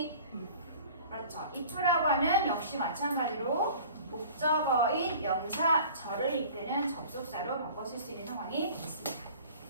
그렇죠. if라고 하는 역시 마찬가지로 목적어인 명사절을 이끄는 접속사로 바꿔 쓸 수 있는 상황이 있습니다.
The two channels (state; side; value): inverted; both; correlation -0.46